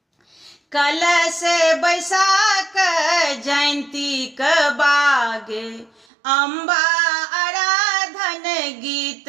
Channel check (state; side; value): drops out; left; at 6.1 s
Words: कलश बैसाख जयंती क बागे अम्बा आराधन गीत